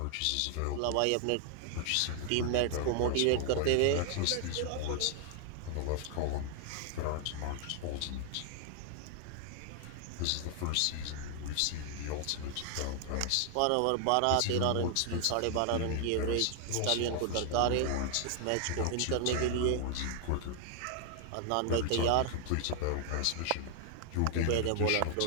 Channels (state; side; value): different; both; correlation 0.00